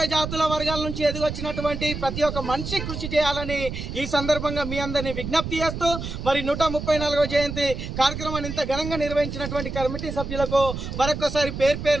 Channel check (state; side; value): noise; right; rumble, 6 dB below the sound